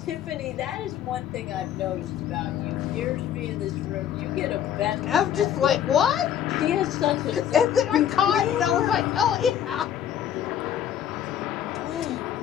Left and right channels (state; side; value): quieter; right; 10.1 dB